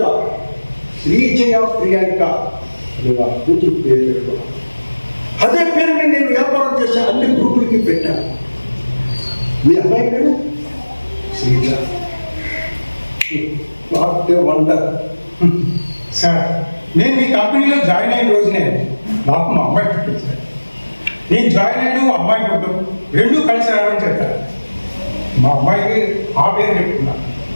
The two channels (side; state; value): both; inverted; correlation -1.00